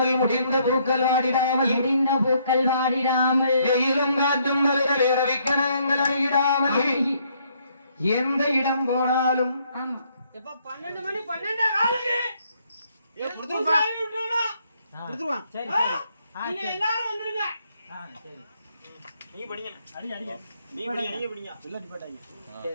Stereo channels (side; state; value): both; inverted; correlation -0.69